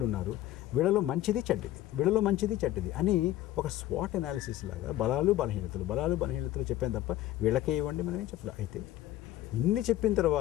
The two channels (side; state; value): right; quieter; 14.4 dB